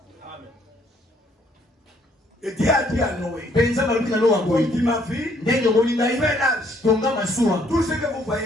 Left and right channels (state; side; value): normal; both; correlation 0.66